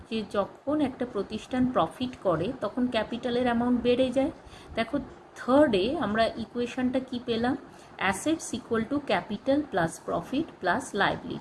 যে যখন একটা প্রতিষ্ঠান প্রফিট করে তখন ক্যাপিটালের অ্যামাউন্ট বেড়ে যায়। দেখো, থার্ডে আমরা ইকুয়েশনটা কি পেলাম? Assets equal to capital plus profit plus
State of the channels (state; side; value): identical; both; correlation 1.00